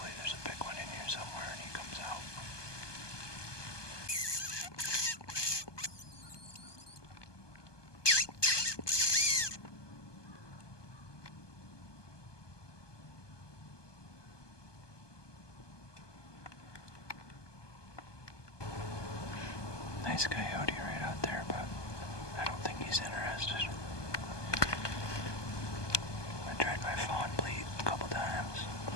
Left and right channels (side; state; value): right; late; 1.2 ms